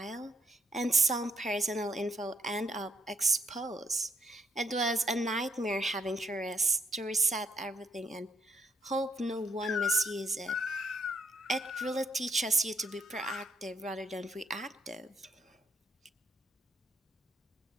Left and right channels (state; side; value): normal; both; correlation 0.73